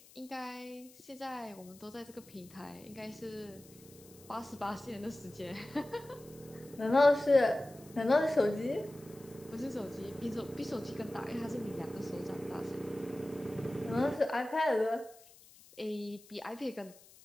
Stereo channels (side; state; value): left; noise; hiss, 23 dB below the sound